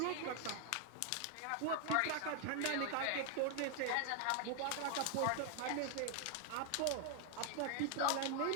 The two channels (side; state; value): both; different; correlation 0.00